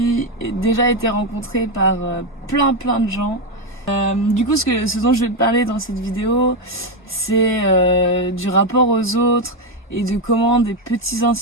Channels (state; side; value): normal; both; correlation 0.07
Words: déjà été rencontré par plein de gens. Du coup, ce dont je vais te parler dans cette vidéo, c'est du rapport aux autres et de comment des petits